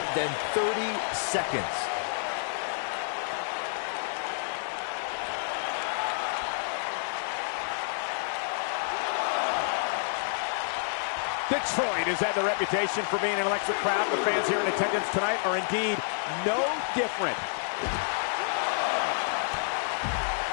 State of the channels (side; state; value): right; silent; digital silence